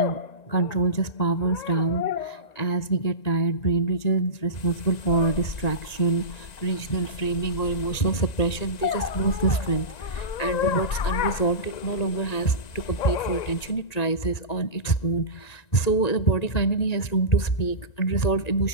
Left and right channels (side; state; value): right; late; 1.9 ms